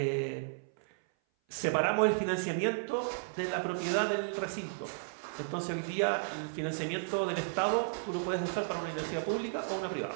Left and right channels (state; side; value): silent; left; 55 dB below the other